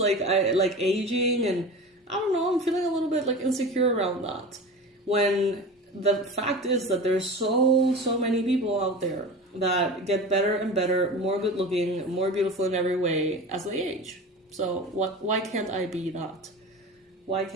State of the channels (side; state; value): both; normal; correlation 0.33